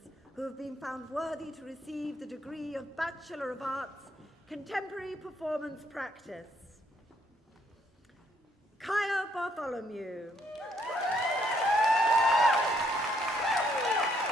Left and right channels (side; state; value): both; normal; correlation 0.70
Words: who have been found worthy to receive the degree of Bachelor of Arts, Contemporary Performance Practice. Kaya Bartholomew.